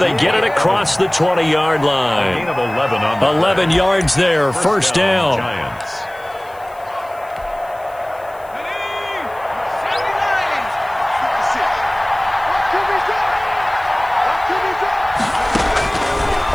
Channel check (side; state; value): left; noise; hiss, 27 dB below the sound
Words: get it across the 20-yard line. 11 yards there, first down. Giants.